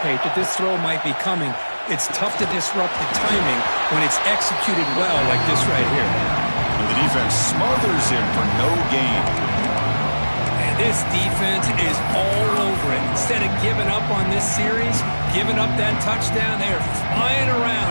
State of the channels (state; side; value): inverted; both; correlation -1.00